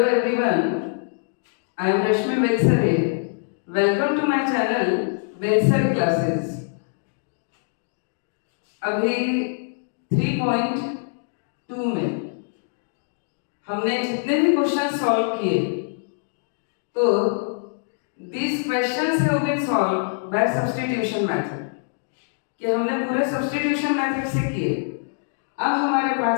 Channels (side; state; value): right; silent; digital silence